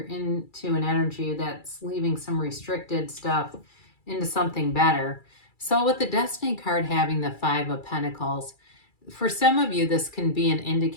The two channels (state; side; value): late; right; 2.3 ms